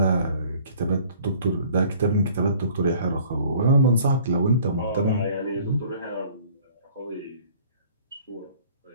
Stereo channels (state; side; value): inverted; both; correlation -0.53